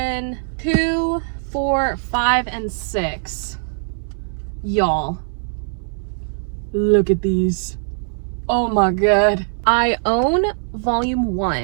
2, 4, 5, and 6. Y'all, look at these. Oh my god. I own volume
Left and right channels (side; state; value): left; silent; 65 dB below the other